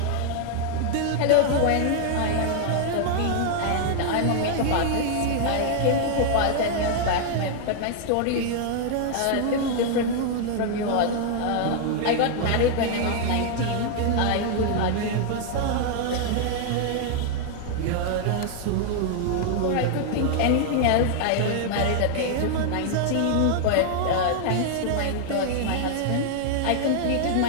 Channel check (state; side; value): different; both; correlation 0.00